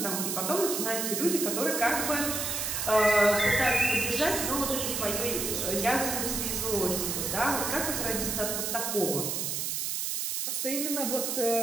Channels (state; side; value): noise; right; hiss, 1 dB below the sound